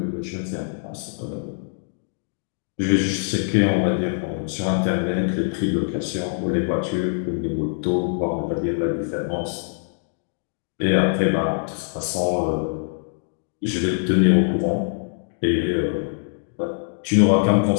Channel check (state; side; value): silent; right; digital silence